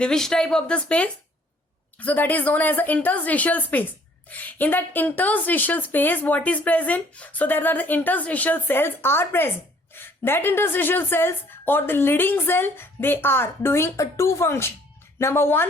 which type of the space? So that is known as the interstitial space. In that interstitial space, what is present? So there are the interstitial cells are present. That interstitial cells, or the leading cell, they are doing a 2 function. Number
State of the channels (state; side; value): normal; both; correlation 0.60